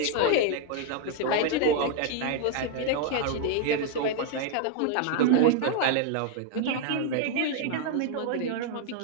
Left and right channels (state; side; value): different; both; correlation 0.00